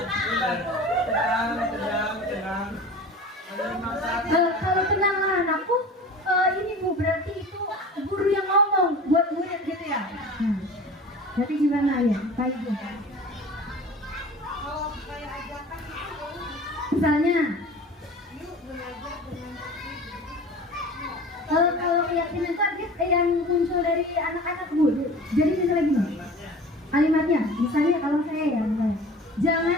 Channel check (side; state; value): both; normal; correlation 0.39